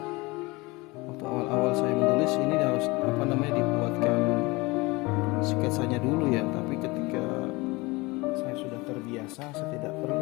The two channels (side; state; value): right; quieter; 23.7 dB